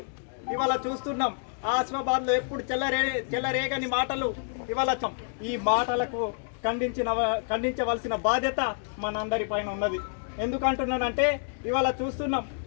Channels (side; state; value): right; silent; digital silence